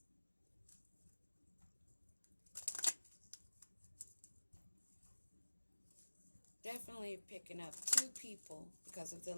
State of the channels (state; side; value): inverted; both; correlation -1.00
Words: Definitely picking up two people because of the